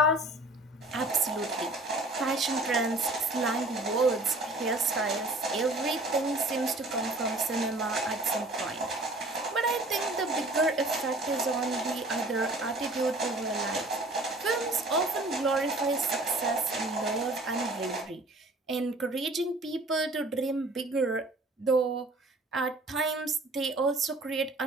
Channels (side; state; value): both; normal; correlation 0.50